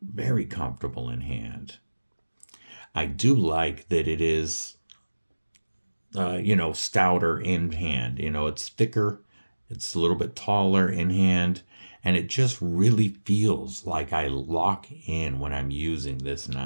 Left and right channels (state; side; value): inverted; both; correlation -1.00